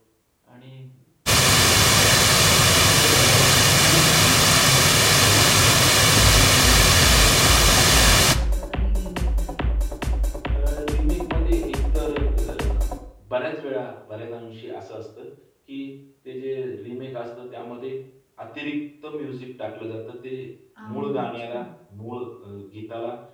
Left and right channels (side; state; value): both; identical; correlation 1.00